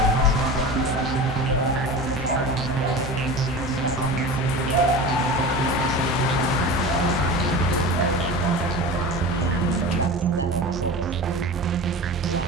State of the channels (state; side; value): normal; both; correlation 0.32